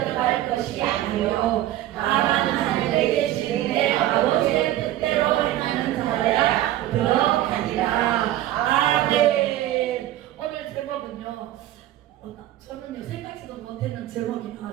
것이 아니요 다만 하늘에 계신 내 아버지의 뜻대로 행하는 자야 들어가리라. 아멘. 오늘 제목은요, 저는요 생각지도 못했는 제목이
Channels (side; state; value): left; quieter; 13.9 dB